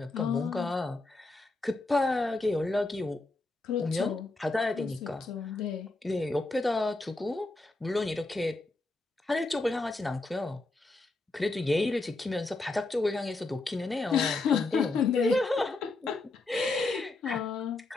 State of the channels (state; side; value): quieter; right; 3.2 dB